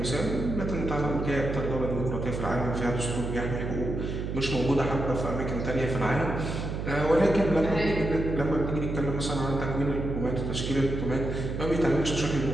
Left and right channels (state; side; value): noise; right; hum, 4 dB below the sound